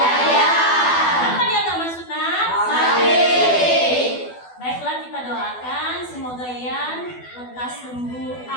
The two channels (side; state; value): right; late; 12 ms